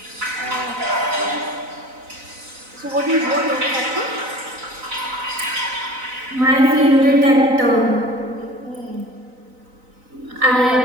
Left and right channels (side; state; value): left; late; 4.0 ms